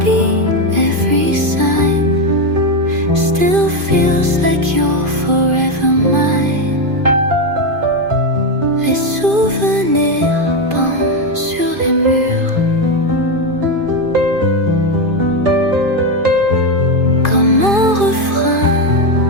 every sign still feels like you're forever mine. Les souvenirs pendent sur les murs, comme un refrain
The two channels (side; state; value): left; late; 2.5 ms